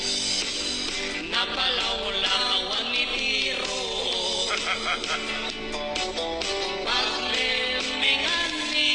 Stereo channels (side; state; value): both; identical; correlation 1.00